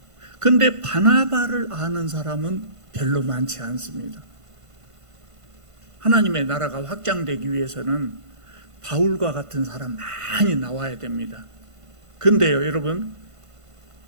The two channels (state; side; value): late; left; 1.5 ms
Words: 그런데 바나바를 아는 사람은 별로 많지 않습니다. 하나님의 나라가 확장되기 위해서는 바울과 같은 사람 많이 나와야 됩니다. 그런데요, 여러분,